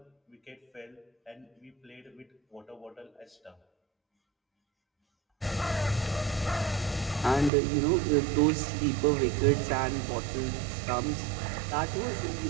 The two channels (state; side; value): drops out; left; at 7.5 s